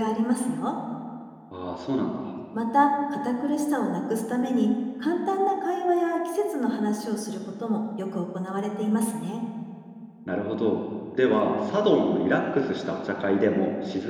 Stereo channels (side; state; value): both; identical; correlation 1.00